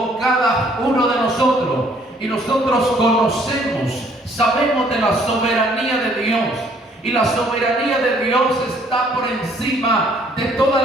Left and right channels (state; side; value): normal; both; correlation 0.62